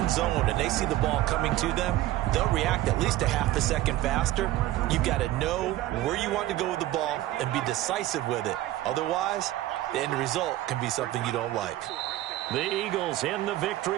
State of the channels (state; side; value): quieter; left; 15.2 dB